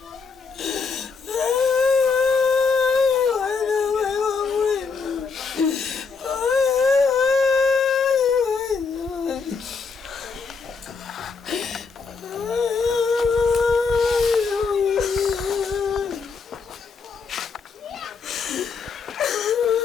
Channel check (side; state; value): right; quieter; 5.0 dB